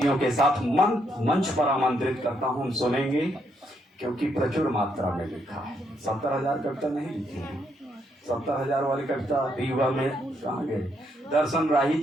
के साथ मंच पर आमंत्रित करता हूं। हम सुनेंगे क्योंकि प्रचुर मात्रा में लिखा है। 70,000 कविता नहीं लिखी है, 70,000 वाली कविता दीवा में कहाँ गए? दर्शन राही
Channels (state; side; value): normal; both; correlation 0.75